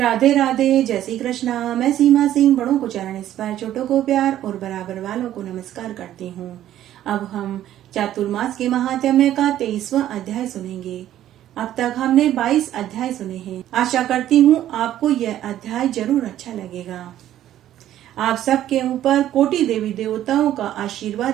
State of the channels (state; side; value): quieter; left; 12.3 dB